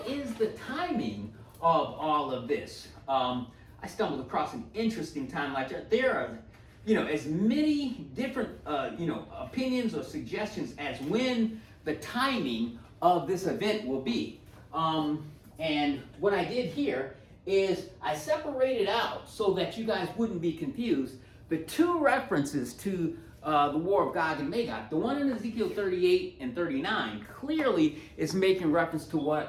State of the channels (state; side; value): identical; both; correlation 1.00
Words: is the timing of all of this? I stumbled across an interesting timeline chart. There are, as many different, opinions or suggestions as when the timing of this event will be. And what I did here is I separated out, so that you guys wouldn't be confused, the two references to the War of Gog and Magog. The one in Ezekiel 38 and 39 clearly is making reference to